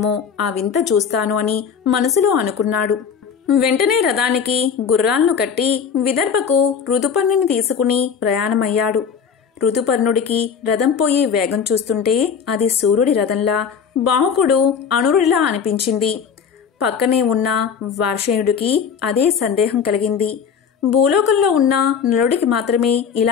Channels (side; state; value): right; quieter; 6.9 dB